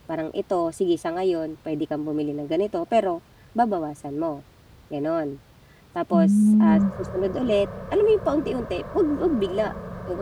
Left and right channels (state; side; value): identical; both; correlation 1.00